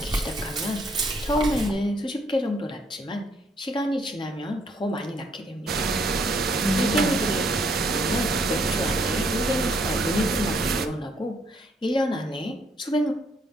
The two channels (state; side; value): normal; both; correlation 0.68